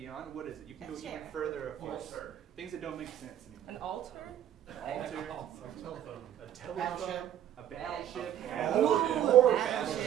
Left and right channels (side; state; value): left; quieter; 10.9 dB